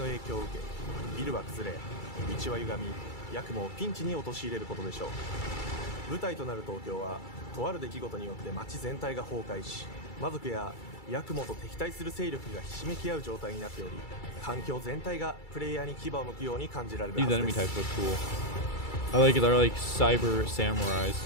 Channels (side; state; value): right; late; 2.3 ms